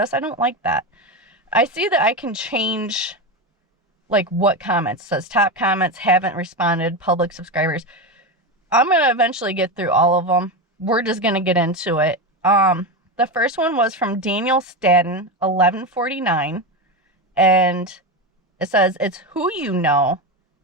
I don't like that. I see that I can change like what comments. It says top comments, haven't responded, public subscribers. I'm going to eventually get through all of them. We're just going to get into it. The first one was from Daniel Stadden, 1149, and it says, it's who you know,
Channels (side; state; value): both; normal; correlation 0.16